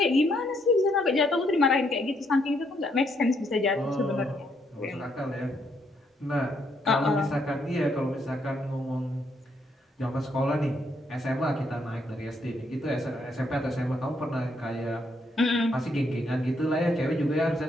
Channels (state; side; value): normal; both; correlation 0.73